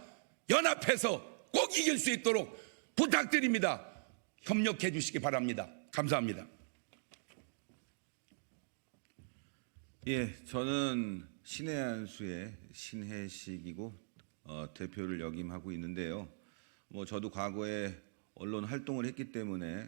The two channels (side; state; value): left; silent; digital silence